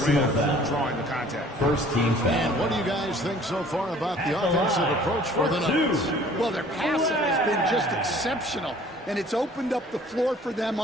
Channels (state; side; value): normal; both; correlation 0.52